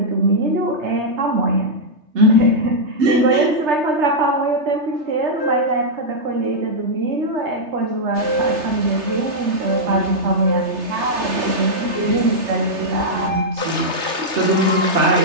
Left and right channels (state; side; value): late; left; 3.3 ms